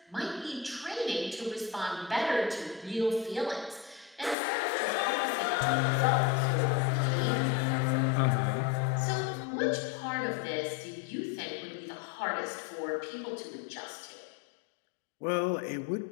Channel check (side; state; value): right; drops out; at 4.4 s